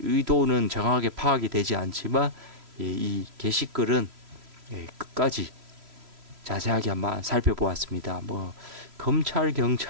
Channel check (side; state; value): left; late; 3.0 ms